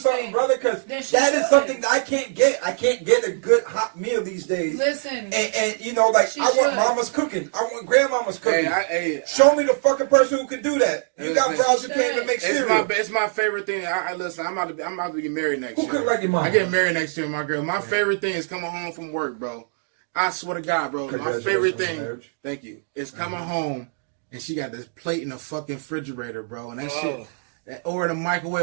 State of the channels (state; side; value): silent; left; digital silence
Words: brother, because that is something that I can't get. I can't get a good hot meal these days. Listen, and you know, like I want mama's cooking. I want grandmama's cooking. Show me the fucking person who can do that. You got bras who can't even make cereal. It's my favorite thing. Listen, I'm about to get married next year. Who cook like your mama? I get married next year, my girl. My favorite thing is coming home from work, bro. I swear to God, bro. My favorite thing, thank you, is coming home and she got this plate in the fucking refrigerator, bro, and that shit, or in the